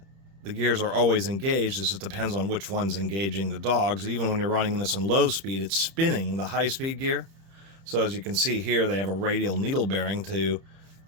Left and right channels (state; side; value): late; left; 31 ms